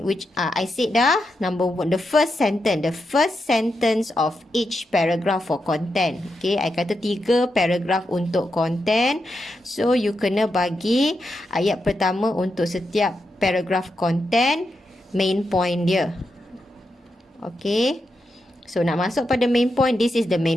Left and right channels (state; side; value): normal; both; correlation 0.86